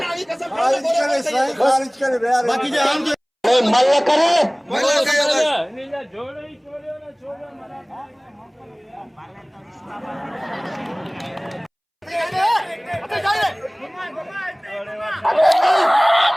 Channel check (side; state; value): both; identical; correlation 1.00